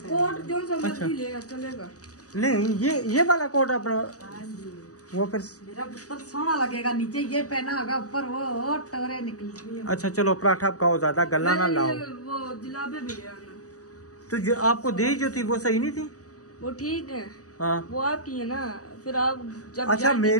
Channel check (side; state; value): right; late; 0.66 ms